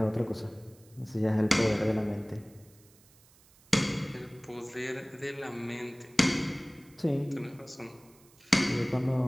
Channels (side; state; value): right; noise; hiss, 28 dB below the sound